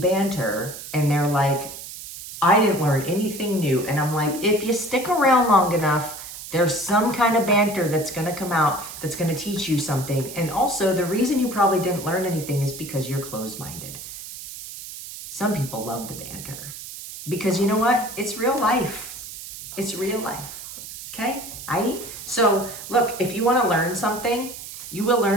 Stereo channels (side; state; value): right; noise; hiss, 11 dB below the sound